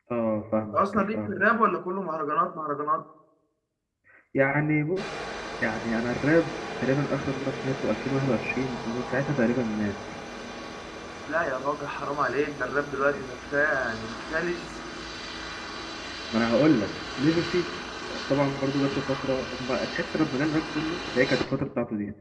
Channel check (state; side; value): identical; both; correlation 1.00